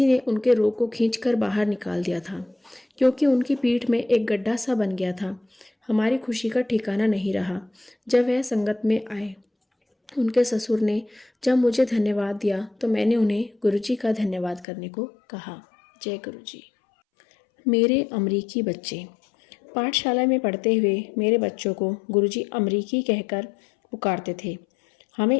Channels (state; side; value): drops out; right; at 14.7 s